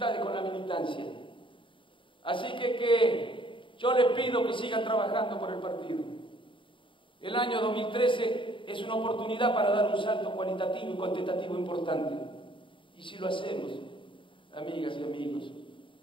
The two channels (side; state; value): right; late; 0.24 ms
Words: con la militancia. Así que yo les pido que sigan trabajando por el partido. El año 2013 es una oportunidad para dar un salto cualitativo y cuantitativo importante. Y si lo hacemos, amigas y amigos,